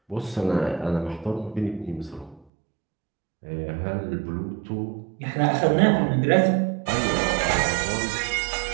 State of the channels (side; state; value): left; drops out; at 2.5 s